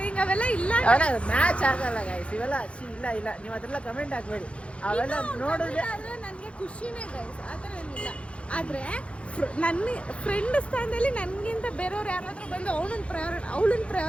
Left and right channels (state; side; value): late; right; 0.060 ms